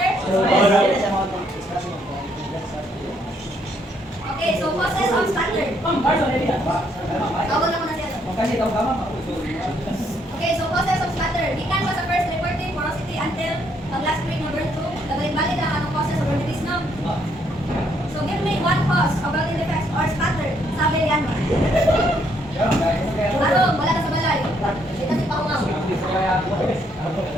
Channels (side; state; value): both; normal; correlation 0.71